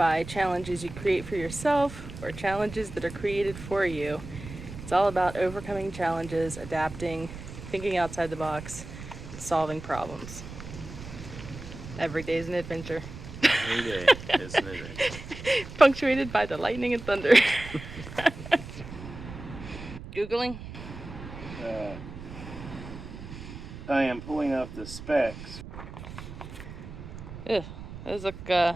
challenges you create for yourself or challenges that are created for you, it's all about overcoming challenges, adapting, thinking outside the box, solving problems. Every day is an adventure. Every day is an adventure. Punctuated by the lightning and thunder. Googling? I am pulling up the specs. Ugh, those look,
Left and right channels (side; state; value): right; noise; rumble, 12 dB below the sound